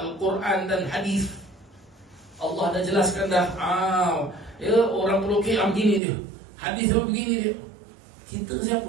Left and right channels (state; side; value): drops out; left; at 6.0 s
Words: dan hadis. Allah dah jelaskan dah. Ya, orang pelukik begini dia, hadis begini dia. Kita